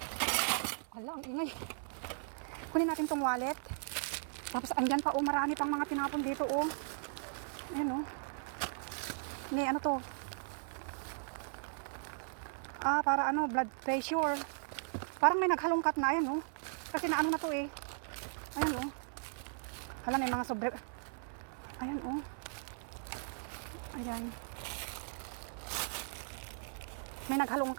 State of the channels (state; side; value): silent; left; 53 dB below the other